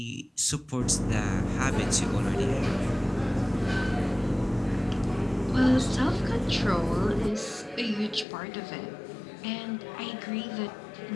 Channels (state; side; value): drops out; right; at 8.2 s